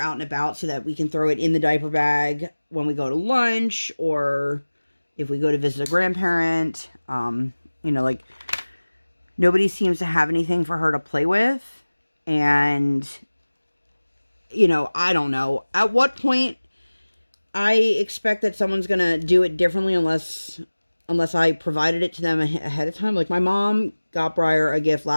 and about, so that we can throw it in the diaper bag when we go to lunch, or if we go to visit a grandparent. Like, nobody seems to have anything for her to play with. And, I don't know. At what point I expect that someone's going to do it differently unless I provided it to them ahead of time. Like, my mom got Briar a gift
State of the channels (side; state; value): both; inverted; correlation -1.00